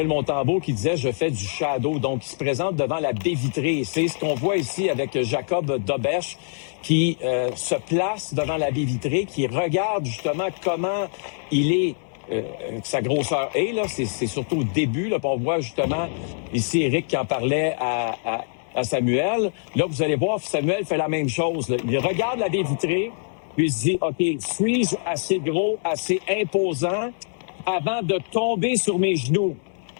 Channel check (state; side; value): silent; right; digital silence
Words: Montembeault qui disait « Je fais du shadow ». Donc, il se présente devant la baie vitrée. C'est ce qu'on voit ici avec Jacob Dobèche qui se place devant la baie vitrée, qui regarde justement comment il est, sa grosseur est. Là, c'est surtout au début. Là, on voit justement ici Éric qui en parlait à Samuel. Là, vous allez voir, Samuel fait la même chose. Là. Il regarde la baie vitrée, puis il se dit, OK, suis-je assez gros, assez imposant avant de tomber sur mes genoux?